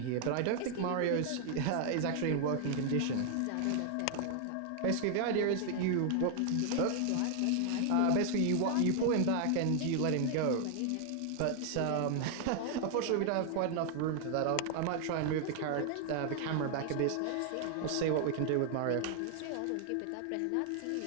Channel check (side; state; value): both; different; correlation 0.00